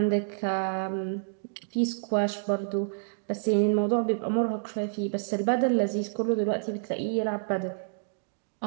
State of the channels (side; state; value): left; silent; digital silence